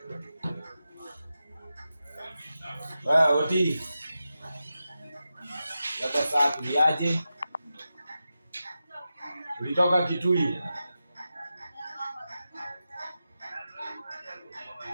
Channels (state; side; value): inverted; both; correlation -0.92